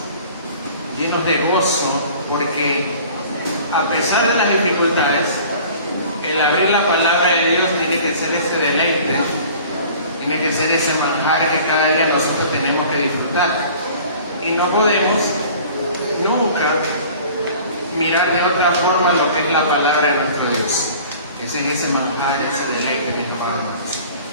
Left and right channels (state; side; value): inverted; both; correlation -0.46